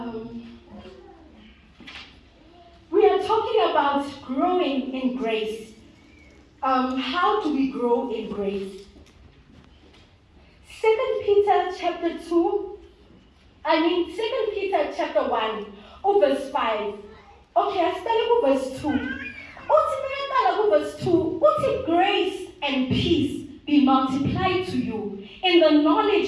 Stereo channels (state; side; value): identical; both; correlation 1.00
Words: We are talking about growing in grace. How do we grow in grace? 2 Peter chapter 2. 2 Peter chapter 1, verse 5. Okay, I started with verse 2. Verse 2, grace and peace be multiplied to you in the